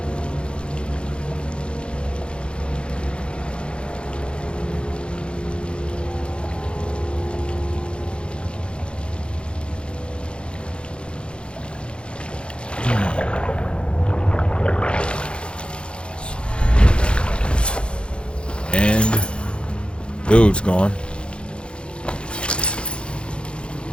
And dude's gone.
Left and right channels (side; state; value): right; late; 0.056 ms